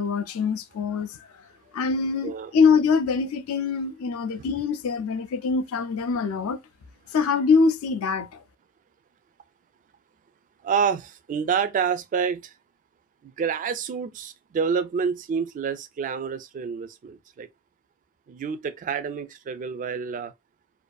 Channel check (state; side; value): normal; both; correlation 0.33